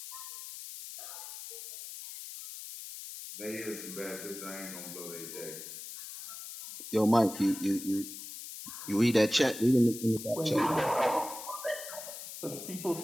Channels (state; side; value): noise; left; hiss, 10 dB below the sound